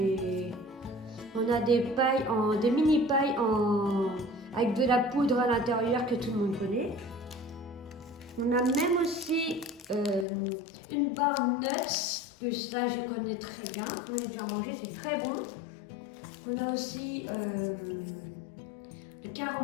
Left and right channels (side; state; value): right; drops out; at 10.2 s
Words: a des pailles, des mini pailles avec de la poudre à l'intérieur que tout le monde connaît. On a même aussi une barre nuts, que ça je connais très bien, j'en ai déjà mangé, c'est très bon. On a aussi le